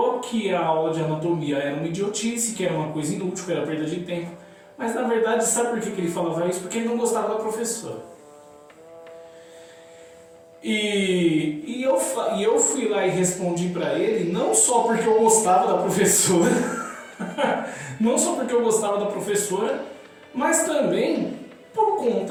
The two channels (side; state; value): both; identical; correlation 1.00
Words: que a aula de anatomia era uma idiotice, que era uma coisa inútil, que era perda de tempo. Mas na verdade, sabe por que ele falava isso? Porque ele não gostava da professora. E eu fui lá e respondi para ele, não só porque eu gostava da professora, mas também por